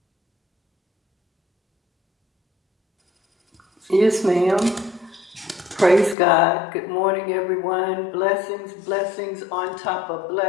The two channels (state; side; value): drops out; right; at 6.2 s